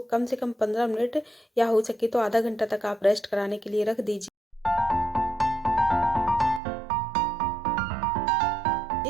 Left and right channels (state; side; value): drops out; left; at 6.6 s